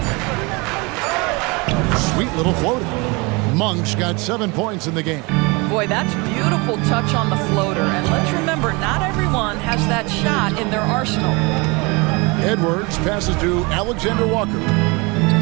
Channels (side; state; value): left; quieter; 27.5 dB